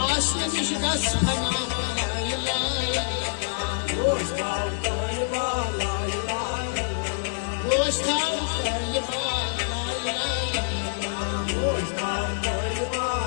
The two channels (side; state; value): right; silent; digital silence